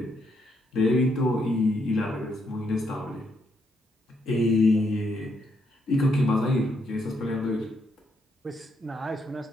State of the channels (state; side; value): normal; both; correlation 0.76